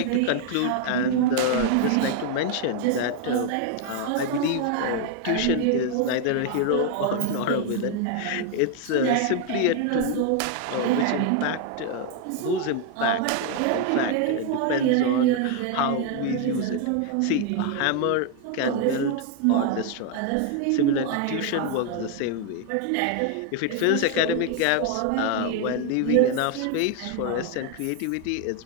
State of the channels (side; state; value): both; different; correlation 0.01